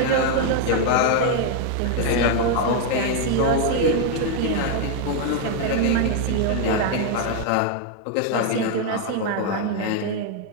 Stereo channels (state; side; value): different; both; correlation 0.00